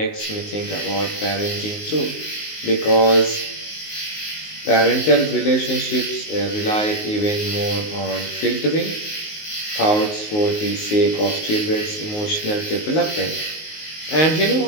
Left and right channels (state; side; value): late; right; 19 ms